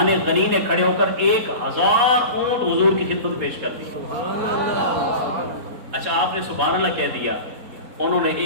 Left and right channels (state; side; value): late; left; 4.3 ms